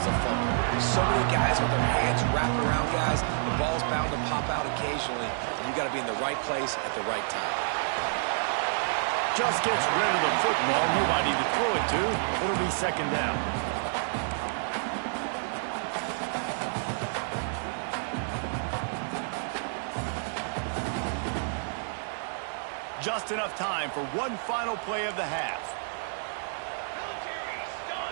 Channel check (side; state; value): left; silent; digital silence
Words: a fumble. So many guys with their hands wrapped around guys, the ball's bound to pop out occasionally, and you got to be in the right place at the right time. Just gets rid of the football, nobody to throw it to. It'll be 2nd down. Just enough time for one final play of the half.